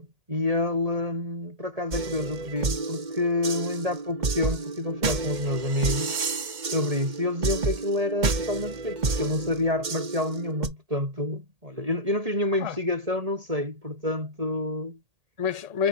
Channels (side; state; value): left; late; 2.1 ms